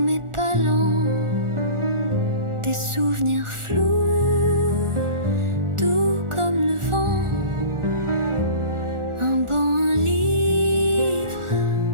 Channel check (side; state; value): left; late; 1.4 ms